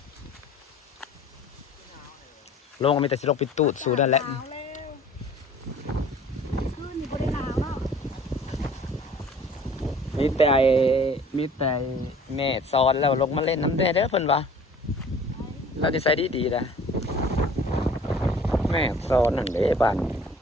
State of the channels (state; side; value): normal; both; correlation 0.50